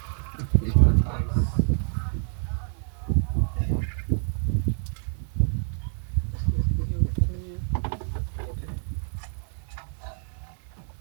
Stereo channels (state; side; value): silent; left; 55 dB below the other